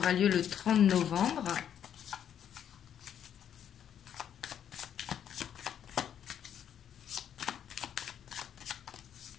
lieu le 30 novembre.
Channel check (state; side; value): quieter; right; 9.2 dB